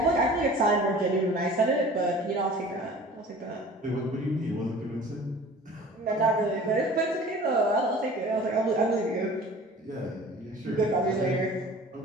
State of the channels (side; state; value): both; normal; correlation 0.44